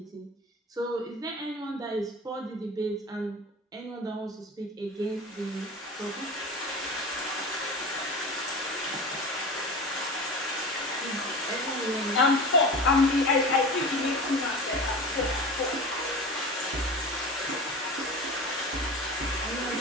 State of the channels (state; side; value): normal; both; correlation 0.32